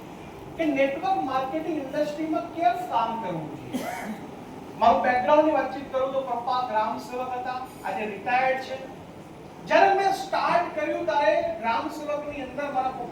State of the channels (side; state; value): both; identical; correlation 1.00